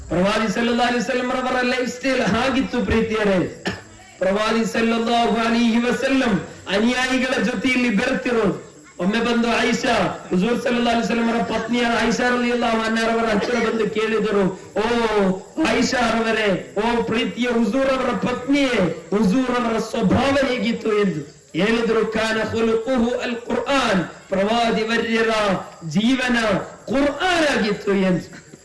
ಪ್ರವಾದಿ ಸಲ್ಲಲ್ಲಾಹು ಅಲೈಹಿ ವಸಲ್ಲಂ ಅವರ ಲೈಫ್ ಸ್ಟೈಲ್ ಹಾಗಿತ್ತು ಪ್ರೀತಿಯರೇ. ಪ್ರವಾದಿ ಸಲ್ಲಲ್ಲಾಹು ಅಲೈಹಿ ವಸಲ್ಲಂ ಅನುಯಾಯಿಗಳ ಜೊತೆಯಲ್ಲಿ ಬೆರೆತಿರೋದು. ಒಮ್ಮೆ ಬಂದು ಆಯಿಷಾ, ಹುಜೂರ್ ಸಲ್ಲಲ್ಲಾಹು ಅಲೈಹಿ ವಸಲ್ಲಂ ಅವರ ಪತ್ನಿಯ ಆಯಿಷಾ ರಲಿಯಲ್ಲಾಹು ಅನ್ಹಾರವರ ಹತ್ತಿರ ಬಂದು ಕೇಳಿದರು, ಓ ಆಯಿಷಾ ಅವರೇ, ಓ ಪ್ರೀತಿಯ ಹುಜೂರ್ ಅವರ ಪತ್ನಿಯೇ, ಹುಜೂರ್ ಅವರ ಸ್ವಭಾವ ಹೇಗಿತ್ತು ಎಂದು ಹೇಳಿದ್ರು. ಕಾನ ಖುಲುಖುಹು ಅಲ್ ಕುರ್ಆನ್, ಪ್ರವಾದಿ ವರ್ಯರ ಜೀವನ ಕುರ್ಆನ್ ಆಗಿತ್ತು ಎಂದು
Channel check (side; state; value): both; identical; correlation 1.00